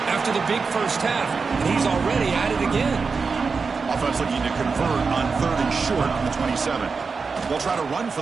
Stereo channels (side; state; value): left; quieter; 4.8 dB